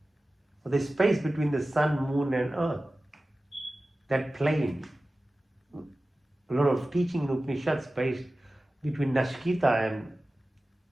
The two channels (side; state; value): both; normal; correlation 0.96